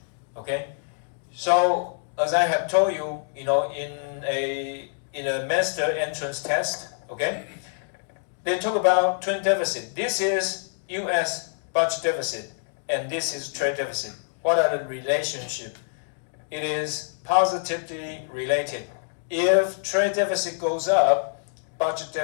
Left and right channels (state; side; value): silent; right; digital silence